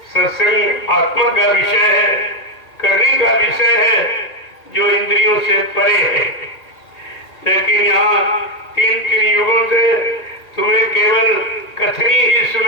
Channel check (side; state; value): right; late; 1.8 ms